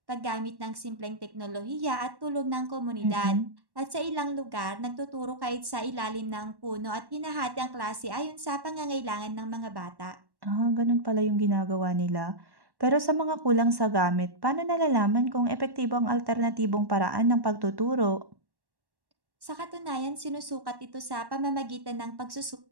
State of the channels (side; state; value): left; late; 1.1 ms